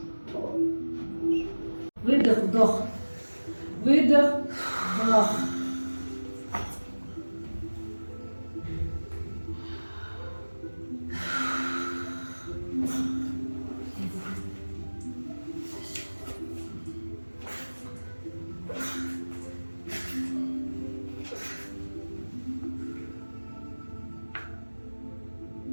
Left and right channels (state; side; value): inverted; both; correlation -1.00